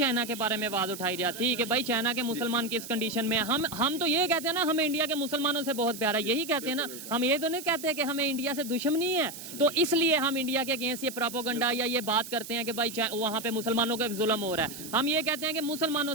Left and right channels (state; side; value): noise; right; hiss, 12 dB below the sound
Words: के बारे में आवाज उठाई जाती कि भाई चाइना के मुसलमान किस कंडीशन में? हम तो ये कहते हैं ना, हमें इंडिया के मुसलमानों से बहुत प्यार है, यही कहते हैं ना, हम ये तो नहीं कहते कि हमें इंडिया से दुश्मनी है, तो इसलिए हम इंडिया के अगेंस्ट ये प्रोपेगेंडा या ये बात करते हैं कि भाई वहाँ पे मुसलमानों का जुल्म हो रहा है। हम ये कहते हैं कि मुसलमानों